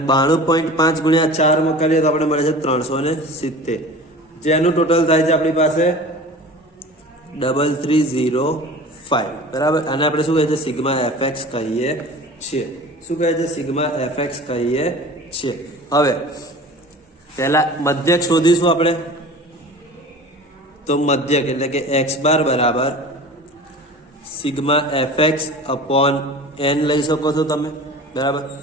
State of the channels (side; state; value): both; normal; correlation 0.39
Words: 92.5 × 4 માં કરીએ તો આપણે મળે છે 370, જેનું ટોટલ થાય છે આપણી પાસે 3305, બરાબર. અને આપણે શું કહીએ છીએ? સિગ્મા fx કહીએ છીએ. શું કહે છે? સિગ્મા fx કહીએ છીએ. હવે પહેલા મધ્યક શોધીશું આપણે. તો મધ્યક એટલે કે x બાર બરાબર સિગ્મા fx અપોન n લઈ શકો છો તમે, બરાબર.